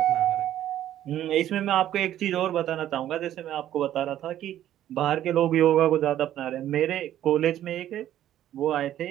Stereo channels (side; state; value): left; quieter; 12.1 dB